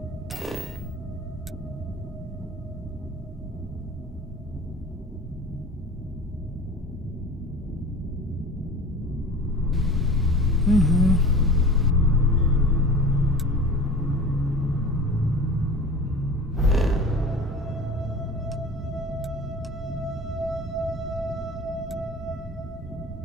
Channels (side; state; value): both; normal; correlation 0.38